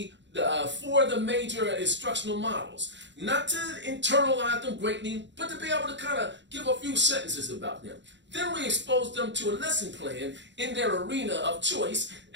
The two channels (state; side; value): late; left; 0.53 ms